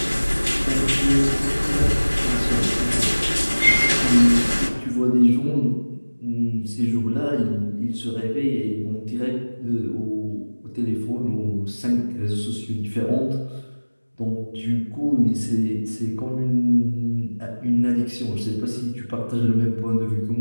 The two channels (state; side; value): inverted; both; correlation -1.00